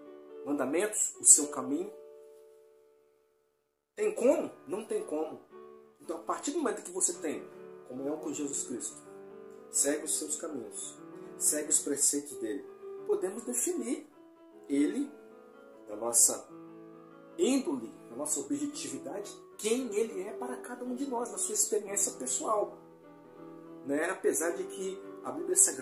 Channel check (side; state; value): both; identical; correlation 1.00